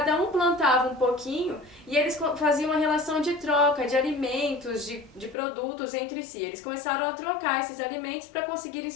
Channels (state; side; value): drops out; right; at 5.4 s